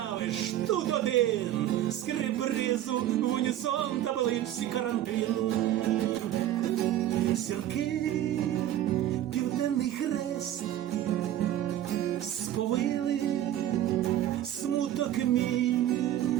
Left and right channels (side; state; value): left; quieter; 12.2 dB